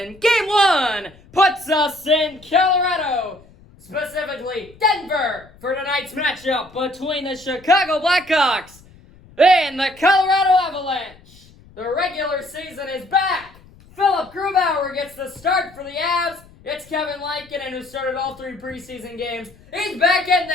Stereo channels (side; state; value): left; noise; rumble, 25 dB below the sound